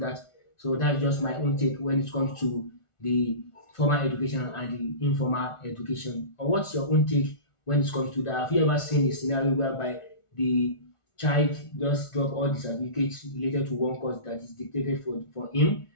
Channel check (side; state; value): right; late; 1.4 ms